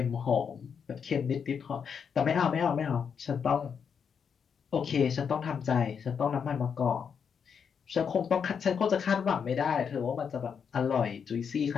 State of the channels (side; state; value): right; quieter; 6.8 dB